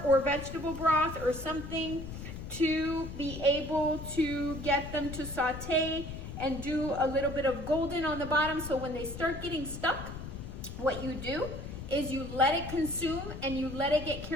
or vegetable broth or something to be able to get them to saute and do a little bit of golden on the bottom. So when they start getting stuck, what you do is you let it consume and you let it get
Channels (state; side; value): noise; left; rumble, 9 dB below the sound